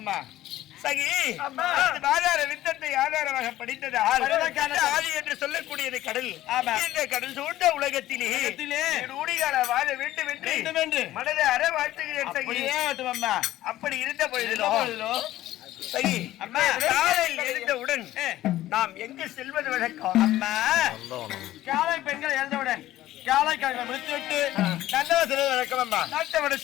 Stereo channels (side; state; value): right; quieter; 14.7 dB